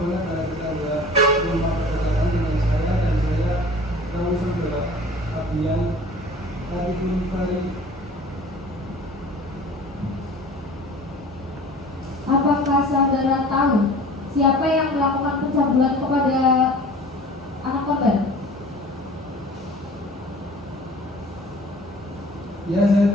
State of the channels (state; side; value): normal; both; correlation 0.44